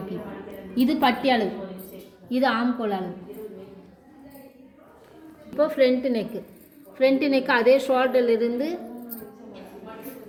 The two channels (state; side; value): identical; both; correlation 1.00